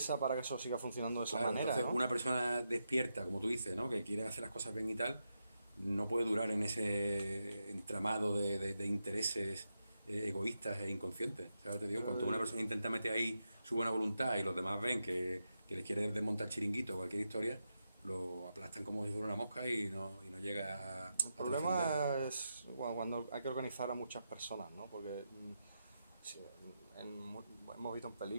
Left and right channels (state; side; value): inverted; both; correlation -0.86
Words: para que eso siga funcionando de esa manera. Entonces, ¿no? una persona despierta, como tú dices, ¿no? Que quiere hacer las cosas bien y tal, no puede durar en ese entramado de intereses egoístas e inconscientes. ¿Sabes? Te digo, cuando una persona intenta meter ahí su buena voluntad y los demás ven que le quiere desmontar chiringuito o cualquier historia, lo aplastan como si fuera una mosca y no llega a El problema es cuando hay que organizar a muchas personas, ¿no? Porque sí, hemos visto en